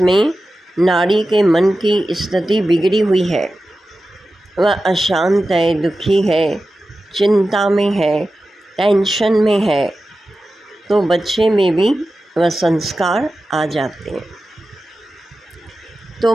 नारी के मन की स्थिति बिगड़ी हुई है, वह अशांत है, दुखी है, चिंता में है, टेंशन में है, तो बच्चे में भी वह संस्कार आ जाते हैं। तो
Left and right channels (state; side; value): normal; both; correlation 0.93